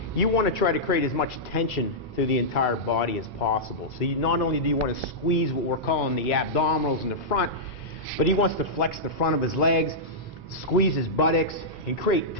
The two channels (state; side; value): normal; both; correlation -0.11